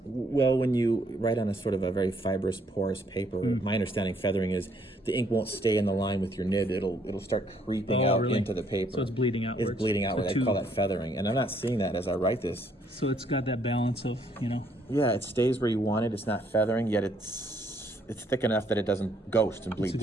Well, when you write on a sort of a very fibrous, porous paper, my understanding feathering is the ink won't stay in the line with your nib. It'll start creeping out really? into the paper. So it's bleeding outwards. It's bleeding outward. So I call that feathering. And I'm not seeing that as I write this. So it's got that balance of, Yeah, it stays where you want it. It's not feathering, yet it's thick enough that it doesn't ghost and bleed it's a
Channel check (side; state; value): both; normal; correlation 0.68